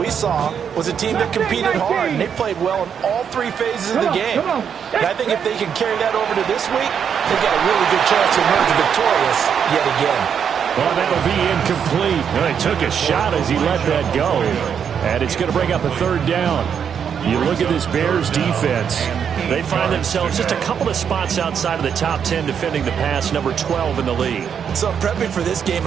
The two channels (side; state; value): left; quieter; 7.6 dB